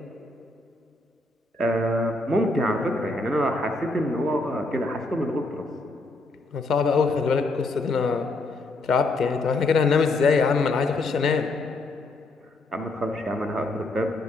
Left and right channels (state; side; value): quieter; right; 3.0 dB